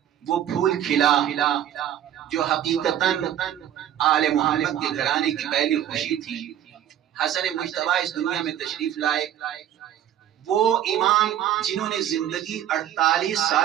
وہ پھول کھلا جو حقیقتاً آل محمد کے گھرانے کی پہلی خوشی تھی۔ حسن مجتبیٰ اس دنیا میں تشریف لائے، وہ امام جنہوں نے زندگی 48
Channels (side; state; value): left; quieter; 11.0 dB